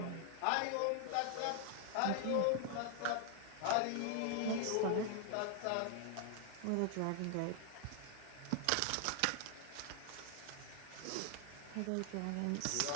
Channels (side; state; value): both; different; correlation 0.00